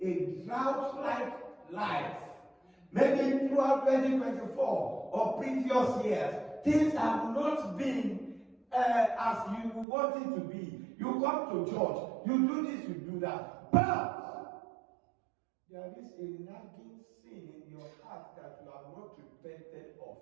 a drought-like life, maybe throughout 2024 or previous years, things have not been as you want it to be. You come to church, you do this, you do that. But there is a nagging sin in your heart that you have not repented of.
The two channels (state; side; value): drops out; left; at 9.9 s